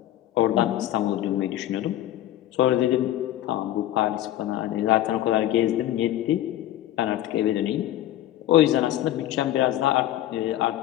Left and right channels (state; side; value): quieter; right; 13.3 dB